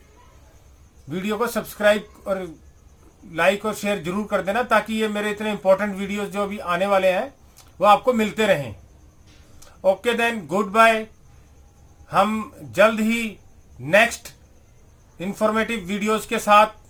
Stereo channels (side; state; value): both; identical; correlation 1.00